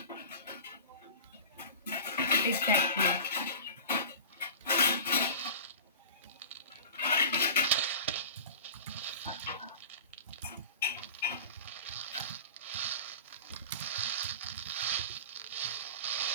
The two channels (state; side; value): inverted; both; correlation -0.35